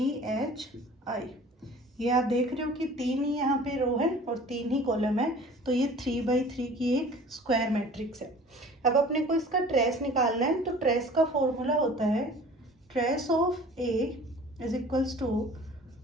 H I. ये आप देख रहे हो कि 3 ही यहाँ पे रो है और 3 ही कॉलम है, तो ये 3x3 की एक स्क्वायर मैट्रिक्स है। अब अपने को इसका ट्रेस निकालना है, तो ट्रेस का फॉर्मूला होता है trace of A is equals to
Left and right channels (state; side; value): normal; both; correlation 0.46